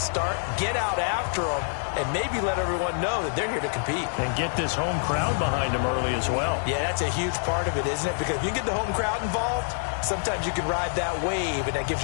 start, get out after them, and maybe let everyone know that they're here to compete. And get this home crowd behind them early as well. Yeah, that's a huge part of it, isn't it? Because if you get the home crowd involved, sometimes you can ride that wave, and that gives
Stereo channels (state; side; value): silent; right; digital silence